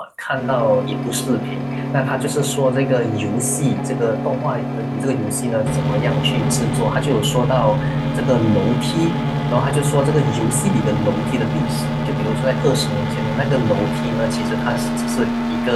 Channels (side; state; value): both; identical; correlation 1.00